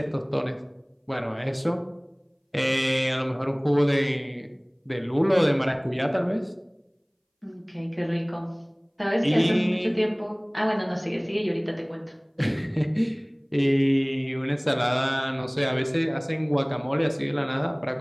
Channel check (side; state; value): both; identical; correlation 1.00